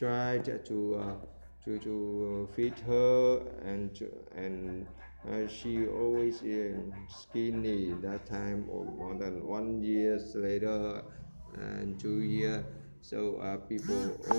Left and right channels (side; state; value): both; inverted; correlation -1.00